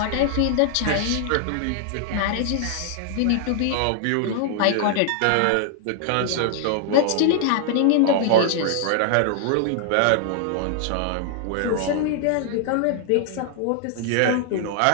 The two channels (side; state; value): both; different; correlation 0.00